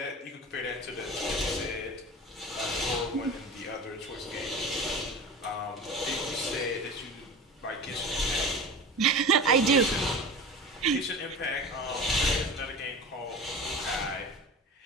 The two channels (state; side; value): normal; both; correlation 0.32